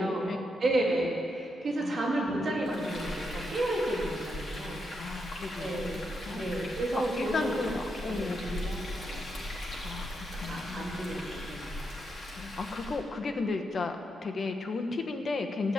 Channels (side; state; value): both; normal; correlation 0.82